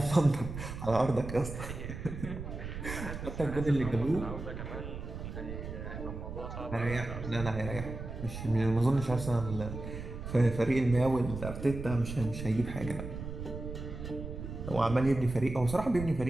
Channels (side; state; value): right; noise; rumble, 8 dB below the sound